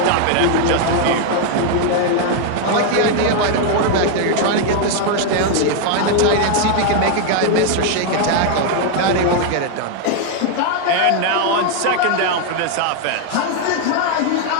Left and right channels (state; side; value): different; both; correlation 0.00